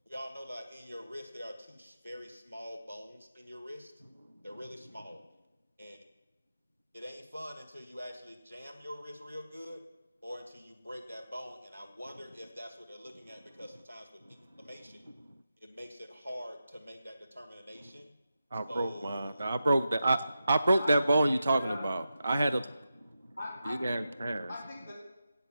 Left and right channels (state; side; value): inverted; both; correlation -0.90